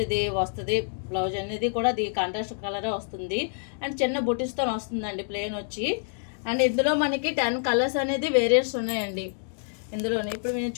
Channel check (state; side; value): silent; right; digital silence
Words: ఇది వస్తుంది, బ్లౌజ్ అనేది కూడా ఇది కాంట్రాస్ట్ కలరే వస్తుంది. అండ్ చిన్న బుటీస్తో వస్తుందండి ప్లెయిన్ వచ్చి. అండ్ ఇందులో మనకి 10 కలర్స్ అనేది వేరియంట్స్ ఉన్నాయండి ఇందులోనే. ఇప్పుడు మీరు